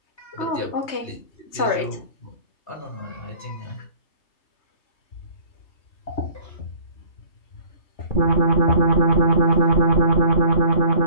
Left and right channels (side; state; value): right; late; 3.2 ms